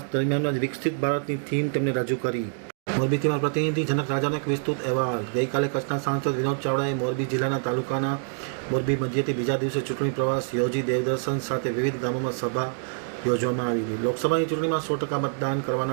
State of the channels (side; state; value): left; silent; digital silence